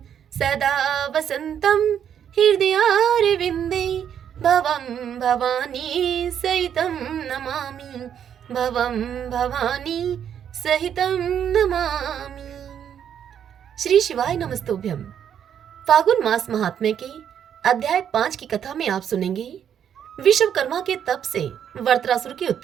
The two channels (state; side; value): quieter; left; 8.9 dB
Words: सदा वसन्तं हृदयारविन्दे भवं भवानी सहितं नमामि। भवं भवानी सहितं नमामि। श्री शिवाय नमस्तुभ्यं। फागुन मास महात्म्य के अध्याय 5 की कथा में आप सुनेंगे विश्वकर्मा के तप से वरत्रासुर की